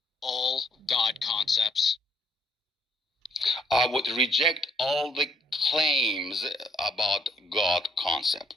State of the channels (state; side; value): normal; both; correlation 0.67